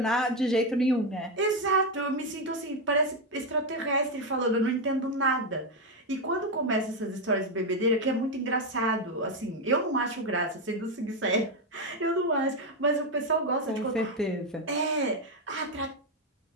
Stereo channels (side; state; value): both; normal; correlation 0.07